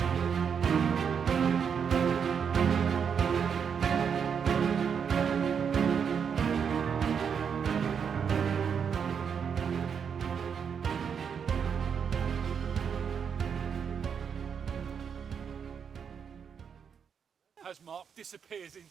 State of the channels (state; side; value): quieter; left; 7.0 dB